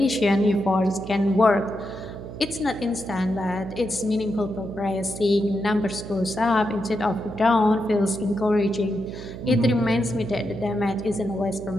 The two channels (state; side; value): noise; right; hum, 11 dB below the sound